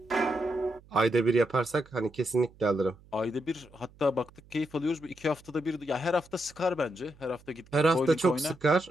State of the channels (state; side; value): noise; right; hum, 26 dB below the sound